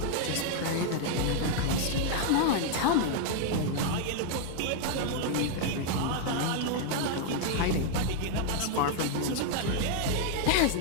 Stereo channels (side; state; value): both; different; correlation 0.00